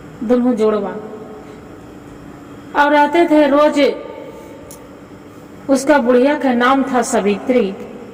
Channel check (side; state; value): both; identical; correlation 1.00